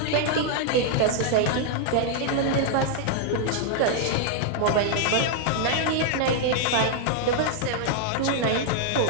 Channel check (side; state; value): both; different; correlation 0.00